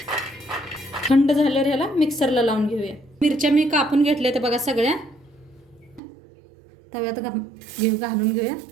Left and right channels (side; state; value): left; drops out; at 6.0 s